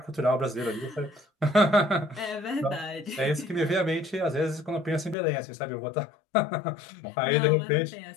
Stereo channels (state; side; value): drops out; right; at 5.2 s